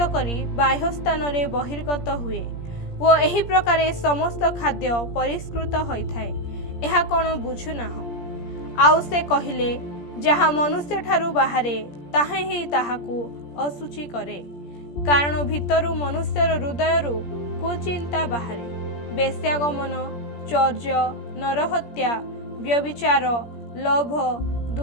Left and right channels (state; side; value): late; right; 17 ms